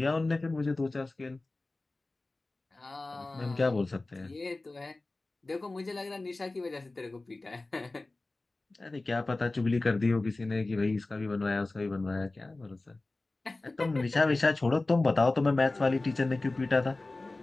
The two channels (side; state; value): right; quieter; 3.1 dB